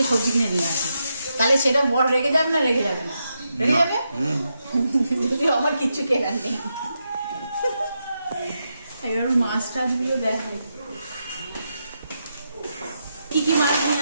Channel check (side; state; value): both; inverted; correlation -0.84